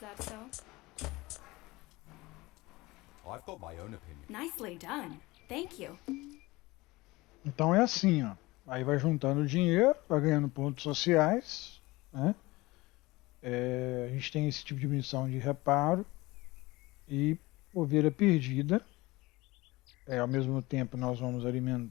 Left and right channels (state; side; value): quieter; right; 21.2 dB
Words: so? I've got my own opinion. Nicely done. Thank you. Então é assim, ó. Aí vai juntando dinheiro, vai ganhando pontos sociais, né? A gente tem esse tipo de missão de reparo e ovelha perdida. Ao mesmo tempo nós vamos